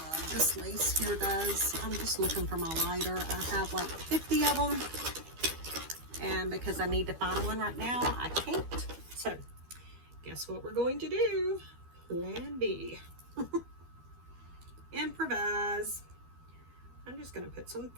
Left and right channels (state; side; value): late; left; 12 ms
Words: This lace here does. I'm just looking for my lighter. I have like 50 of them. And because I need to find one right now, I can't. So, guess what we're going to do? Plan B. Improvise. I'm just going to put some